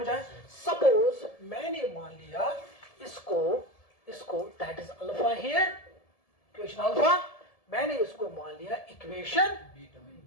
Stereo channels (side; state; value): right; late; 1.7 ms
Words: आया? सपोज मैंने मान लिया इसको that is alpha here, equation alpha. मैंने इसको मान लिया इक्वेशन